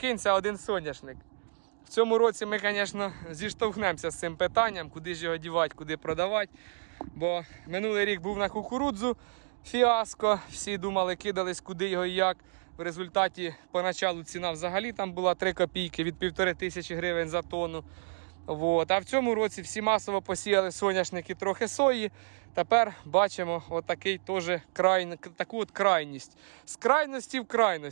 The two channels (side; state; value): left; silent; digital silence